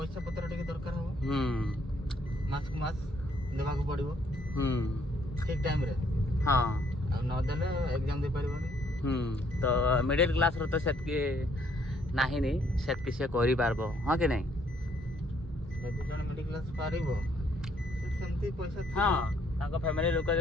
पत्र टिके दरकार हो मास को मास देवा को पड़िबो ठीक टाइम रे हाँ आ न देले एग्जाम दे परिबोनी तो मिडिल क्लास रो तो सेतकी नाही नी सेतकी से करि पारबो हां कि नहीं यदि जन मिडिल क्लास पारिबो सेमती पैसा हां ताको फैमिली लोक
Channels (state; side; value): normal; both; correlation 0.67